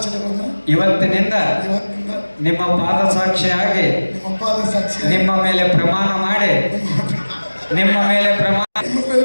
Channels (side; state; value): both; inverted; correlation -1.00